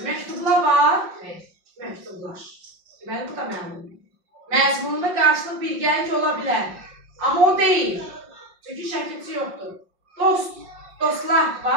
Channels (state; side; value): late; left; 5.6 ms